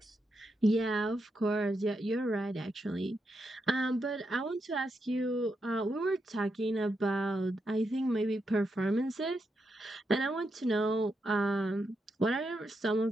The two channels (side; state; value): both; normal; correlation 0.83